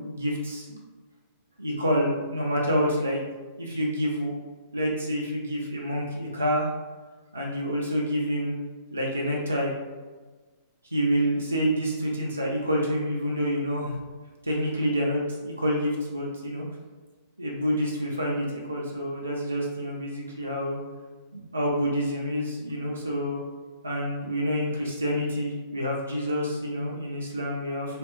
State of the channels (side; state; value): both; inverted; correlation -0.67